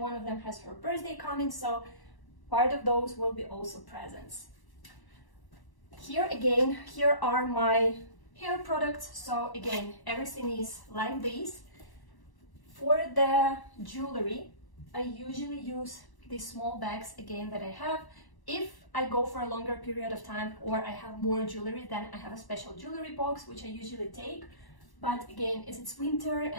one of them has her birthday coming, so part of those will be also presents. Here again, here are my hair products. So again, everything is like this. For the jewelry, I usually use these small bags again that I have. If I go for a longer period of time or I have more jewelry, then I have a special jewelry box, which I usually take. But again, as it's winter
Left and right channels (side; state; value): right; late; 1.1 ms